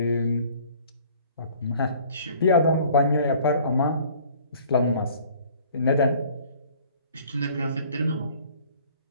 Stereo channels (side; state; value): both; inverted; correlation -0.53